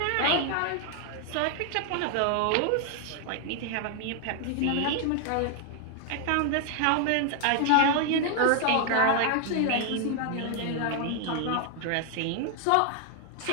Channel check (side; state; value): both; different; correlation 0.00